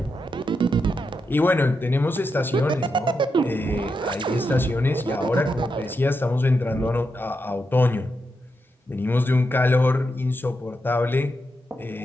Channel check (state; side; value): normal; both; correlation 0.85